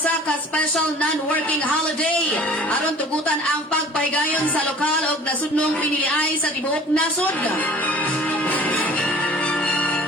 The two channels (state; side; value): normal; both; correlation 0.47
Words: ka special non-working holiday aron tugutan ang pagpahigayon sa lokal ug nasudnong piniliay sa tibuok nasod.